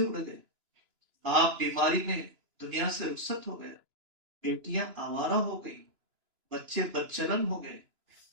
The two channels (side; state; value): left; late; 2.9 ms